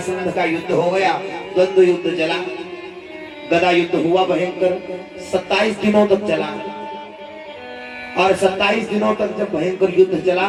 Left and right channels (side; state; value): both; identical; correlation 1.00